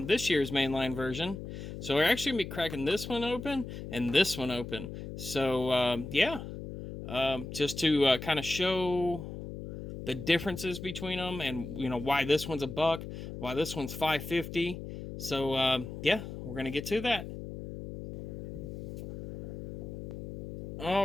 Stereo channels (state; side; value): noise; left; hum, 9 dB below the sound